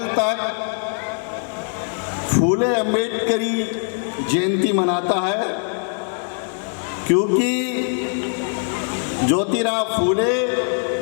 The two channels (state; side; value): silent; right; 55 dB below the other